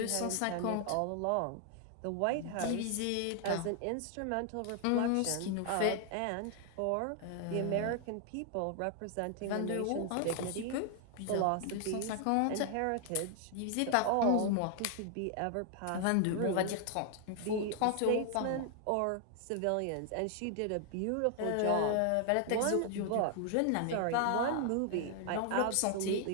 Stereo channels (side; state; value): both; different; correlation 0.00